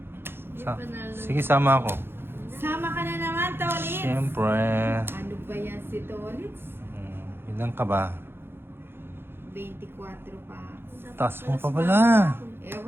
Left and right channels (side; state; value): left; late; 0.11 ms